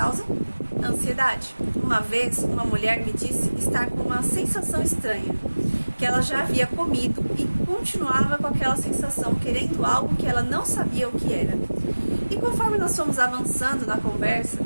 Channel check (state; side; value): inverted; both; correlation -1.00